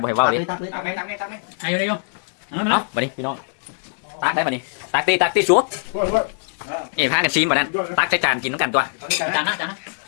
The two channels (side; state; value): right; silent; digital silence